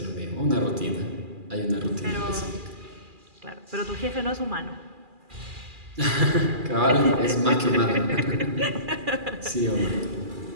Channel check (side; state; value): left; late; 2.4 ms